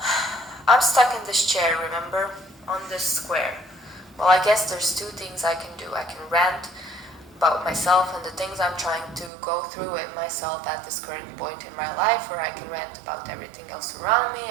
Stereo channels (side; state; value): left; drops out; at 9.3 s